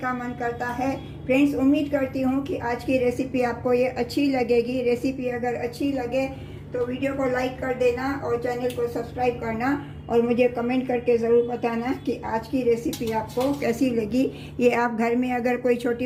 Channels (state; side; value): identical; both; correlation 1.00